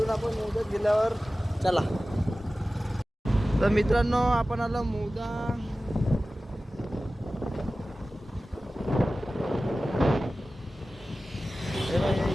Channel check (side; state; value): both; normal; correlation 0.96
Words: आपण मौदात गेल्यावर. चला. तर मित्रांनो आपण आलो मौदा.